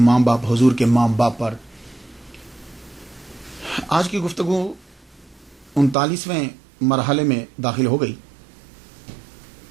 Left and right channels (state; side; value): drops out; left; at 6.0 s